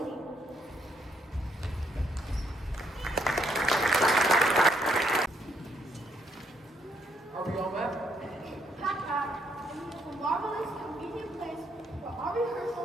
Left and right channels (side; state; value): both; normal; correlation 0.73